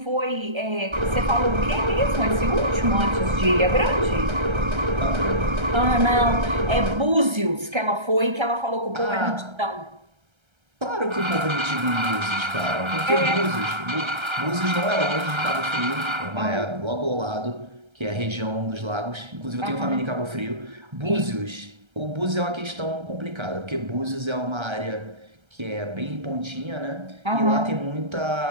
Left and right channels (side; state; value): left; late; 1.3 ms